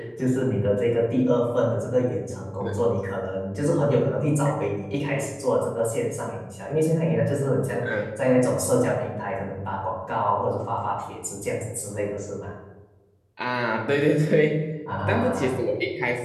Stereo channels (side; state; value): both; identical; correlation 1.00